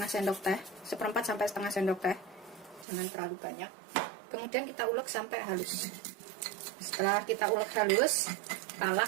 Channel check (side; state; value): left; drops out; at 2.9 s